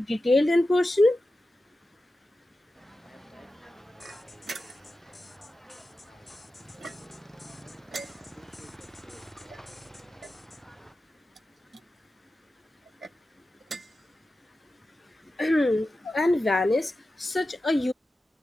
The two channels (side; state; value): both; normal; correlation 0.93